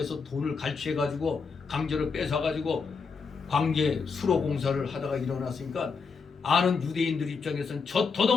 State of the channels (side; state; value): right; quieter; 5.1 dB